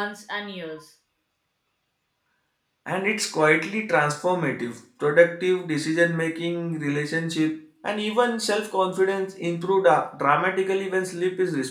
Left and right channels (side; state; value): both; identical; correlation 1.00